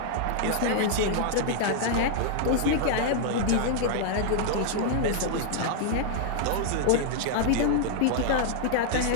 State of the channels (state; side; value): different; both; correlation 0.00